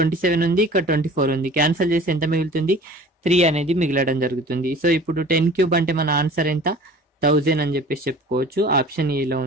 ఉంది, ఇక్కడ 24 ఉంది. క్యాన్సిల్ చేసి ఎంత మిగులుతుంది, 3 అనేది మిగలడం జరుగుతుంది. సో ఇప్పుడు 10 క్యూబ్ అంటే మన ఆన్సర్ ఎంత, 1000 అని చెప్పేసి చెప్పుకోవచ్చు. ఆప్షన్ ఏలో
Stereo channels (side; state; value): both; normal; correlation 0.45